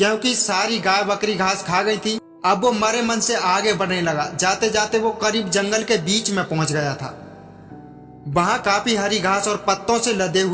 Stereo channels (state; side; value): identical; both; correlation 1.00